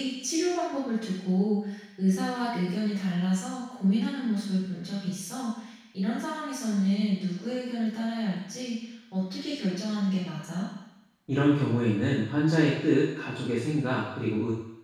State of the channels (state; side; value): identical; both; correlation 1.00